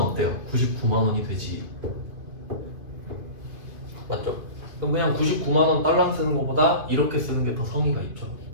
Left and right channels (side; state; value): left; late; 2.5 ms